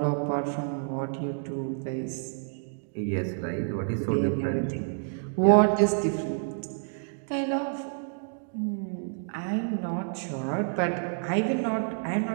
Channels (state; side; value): silent; left; digital silence